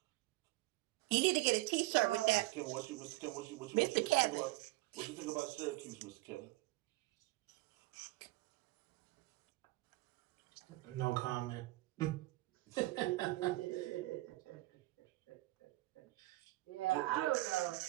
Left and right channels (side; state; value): left; quieter; 20.1 dB